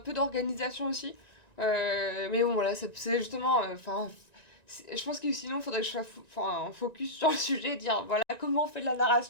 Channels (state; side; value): late; right; 1.9 ms